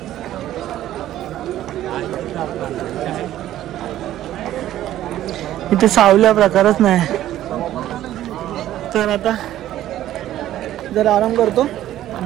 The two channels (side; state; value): left; quieter; 13.1 dB